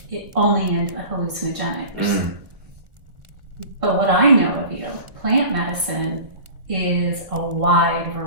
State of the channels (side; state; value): left; late; 1.5 ms